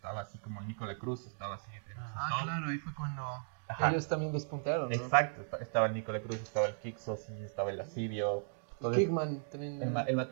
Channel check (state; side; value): silent; left; digital silence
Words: así como Nicola Cruz, estaba así. Claro, ahí fue cuando Ajá. ellos también despuntaron, ¿no? Exacto, estaba el Nicola Cruz, estaba el Kixos, sí, estaba el Lascivio. Entonces, Kickman también. el